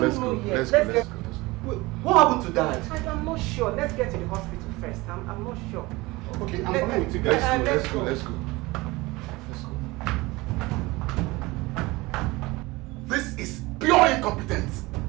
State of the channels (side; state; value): left; quieter; 21.9 dB